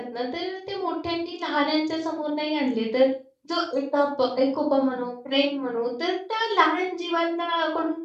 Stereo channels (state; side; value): identical; both; correlation 1.00